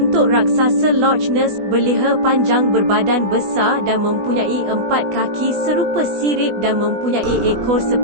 raksasa Loch Ness, berleher panjang berbadan besar dan mempunyai 4 kaki serupa sirip dan mempunyai ekor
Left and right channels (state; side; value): late; left; 20 ms